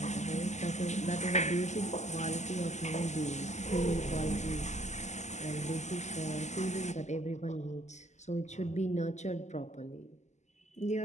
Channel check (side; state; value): right; late; 0.33 ms